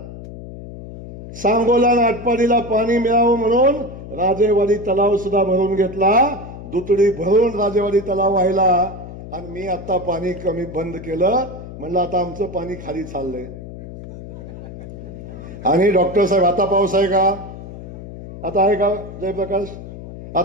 सांगोला आणि आटपाडीला पाणी मिळावं म्हणून राजेवाडी तलाव सुद्धा भरून घेतला, दुतडी भरून राजेवाडी तलाव व्हायला. आणि मी आता पाणी कमी बंद केलं, म्हणलं आता आमचं पाणी खाली चाललंय. आणि डॉक्टर साहेब आता पाऊस आहे का? आता आहे का जयप्रकाश?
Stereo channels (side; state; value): left; noise; hum, 13 dB below the sound